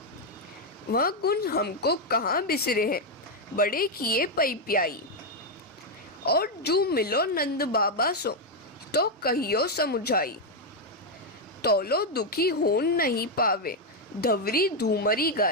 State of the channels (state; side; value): normal; both; correlation 0.02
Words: वह गुण हमको कहाँ बिसरे हैं, बड़े किए पई प्याई। और जो मिलो नंद बाबा सो, तो कहियो समुझाई। तोलो दुखी होन नहीं पावे, धवरी धूमरी